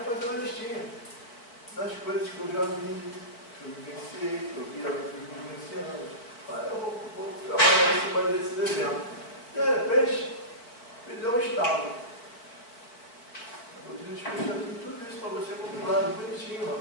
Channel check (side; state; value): right; late; 4.4 ms